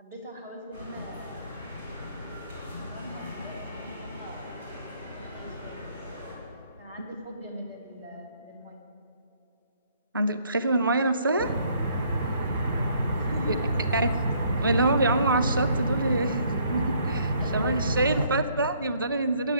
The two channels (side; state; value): both; inverted; correlation -0.65